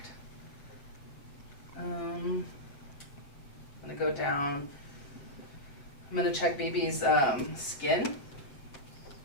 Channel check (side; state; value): right; late; 7.4 ms